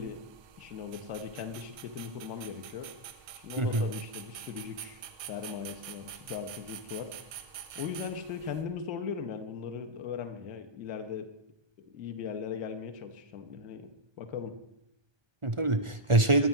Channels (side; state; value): left; late; 1.2 ms